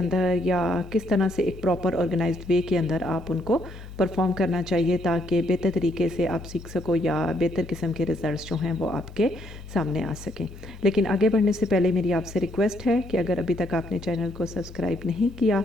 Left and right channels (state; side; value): normal; both; correlation 0.72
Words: या किस तरह से एक प्रॉपर ऑर्गेनाइज्ड वे के अंदर आप उनको परफॉर्म करना चाहिए ताकि बेहतर तरीके से आप सीख सको या बेहतर किस्म के रिज़ल्ट्स जो हैं वो आपके सामने आ सकें। लेकिन आगे बढ़ने से पहले मेरी आपसे रिक्वेस्ट है कि अगर अभी तक आपने चैनल को सब्सक्राइब नहीं किया